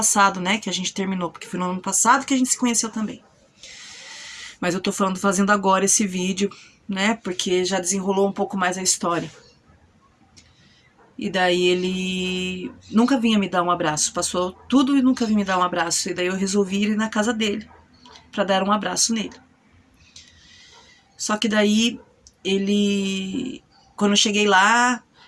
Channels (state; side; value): identical; both; correlation 1.00